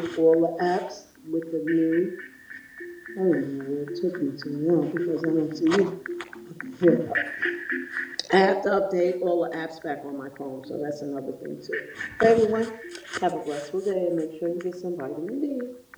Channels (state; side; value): identical; both; correlation 1.00